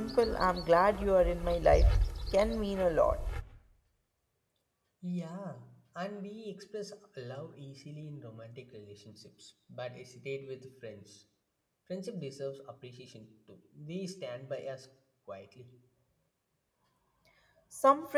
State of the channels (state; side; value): identical; both; correlation 1.00